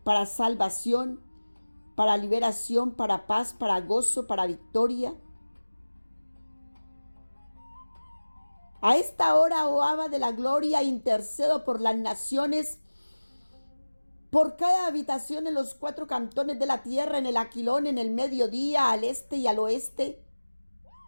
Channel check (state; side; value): inverted; both; correlation -1.00